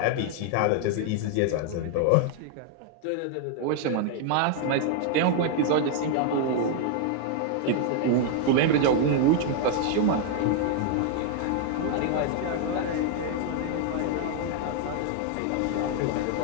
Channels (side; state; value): both; different; correlation 0.00